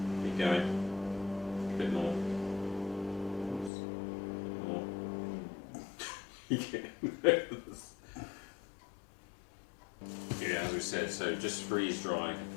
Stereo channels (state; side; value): drops out; right; at 3.7 s